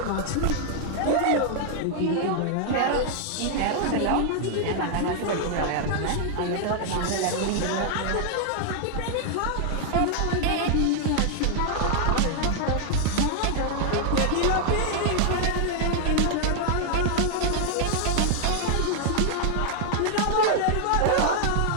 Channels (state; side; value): different; both; correlation 0.00